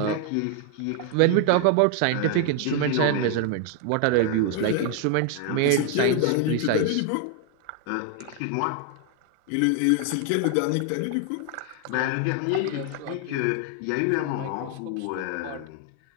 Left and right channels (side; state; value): both; different; correlation 0.00